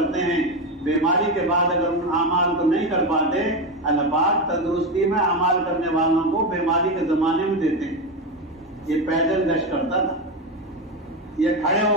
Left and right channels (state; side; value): normal; both; correlation 0.14